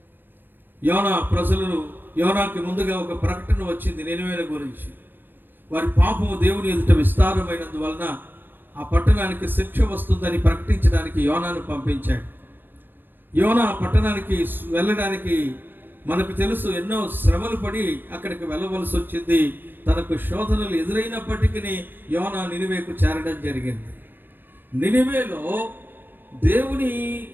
యోనాకి ముందుగా ఒక ప్రకటన వచ్చింది నినివే గురించి. వారి పాపము దేవుని ఎదుట విస్తారమైనందువలన ఆ పట్టణానికి శిక్ష వస్తుందని ప్రకటించడానికి యోనాను పంపించాడు. యోనా పట్టణానికి వెళ్ళడానికి మనకు తెలుసు ఎన్నో శ్రమలు పడి అక్కడికి వెళ్ళవలసి వచ్చింది. తనకు శోధనలు ఎదురైనప్పటికీ యోనా నినివేకు చేరడం జరిగింది. నినివేలో దేవుని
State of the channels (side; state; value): left; late; 0.095 ms